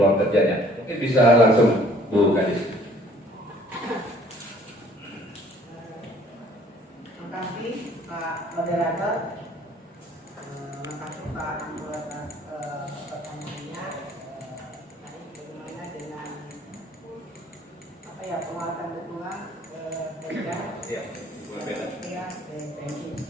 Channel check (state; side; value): normal; both; correlation 0.57